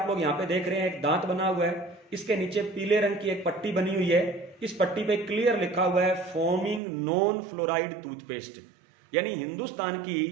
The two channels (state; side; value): drops out; left; at 6.8 s